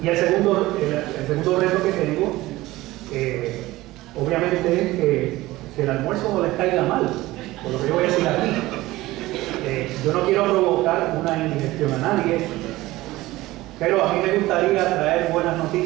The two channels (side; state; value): left; quieter; 18.1 dB